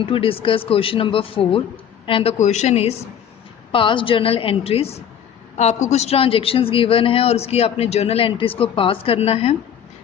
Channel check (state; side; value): quieter; right; 8.9 dB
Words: to discuss question number 4 and the question is past journal entries. आपको कुछ transactions given है और उसकी आपने journal entries को पास करना है.